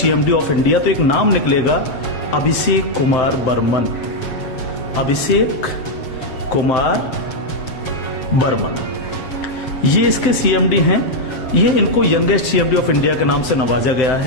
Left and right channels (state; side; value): late; right; 7.8 ms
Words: of India, तो एक नाम निकलेगा अभिषेक कुमार बर्मन। अभिषेक कुमार बर्मन ये इसके सीएमडी हैं। ये इनको यंगेस्ट सीएमडी ऑफ इंडिया के नाम से नवाजा गया